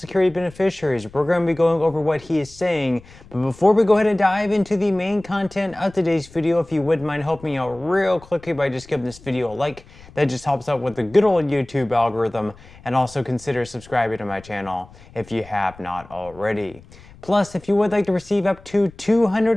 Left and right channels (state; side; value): noise; left; rumble, 22 dB below the sound